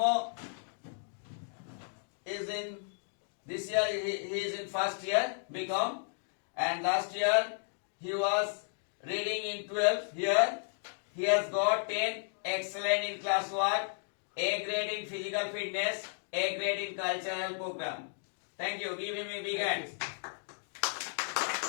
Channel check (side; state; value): right; silent; digital silence